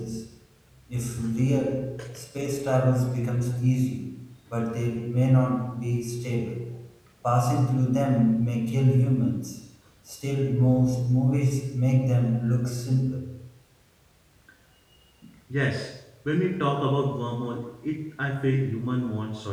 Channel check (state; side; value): identical; both; correlation 1.00